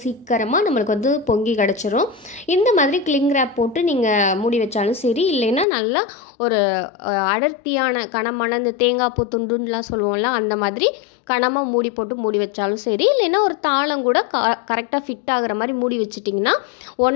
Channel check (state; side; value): drops out; right; at 5.7 s